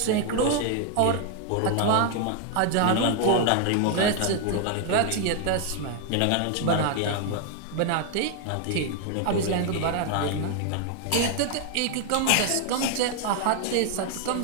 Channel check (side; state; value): both; different; correlation 0.00